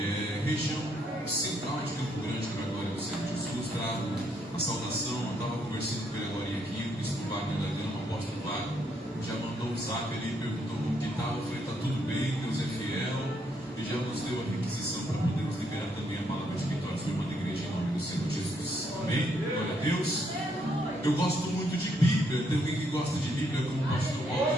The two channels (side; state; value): both; normal; correlation 0.73